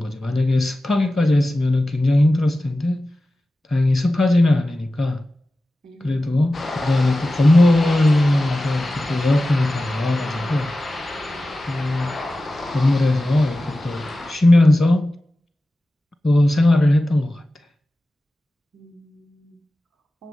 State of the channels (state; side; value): normal; both; correlation 0.95